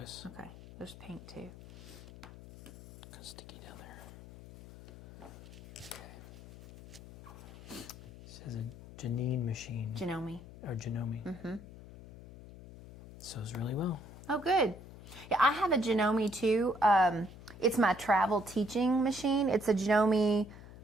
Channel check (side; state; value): left; noise; hum, 16 dB below the sound